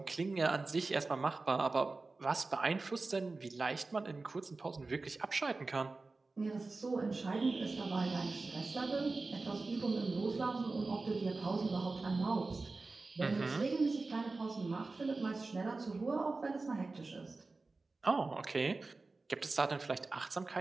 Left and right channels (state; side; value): quieter; left; 3.6 dB